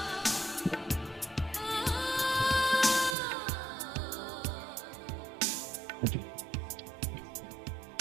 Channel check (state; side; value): drops out; left; at 3.2 s